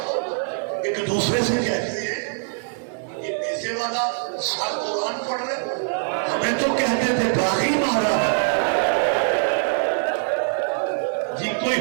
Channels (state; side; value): silent; left; digital silence